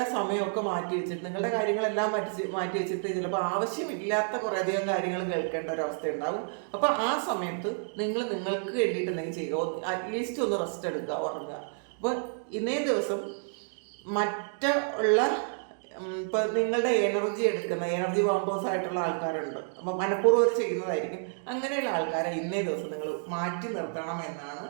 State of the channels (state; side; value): silent; left; digital silence